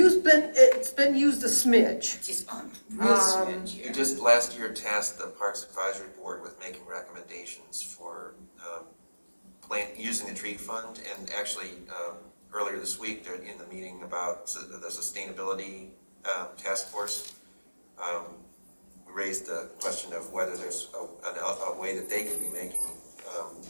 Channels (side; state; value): both; inverted; correlation -1.00